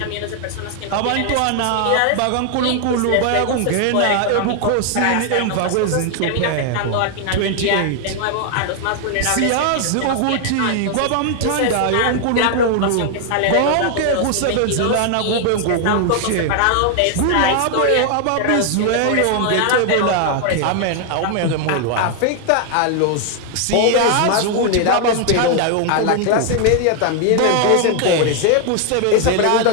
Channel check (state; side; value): different; both; correlation 0.00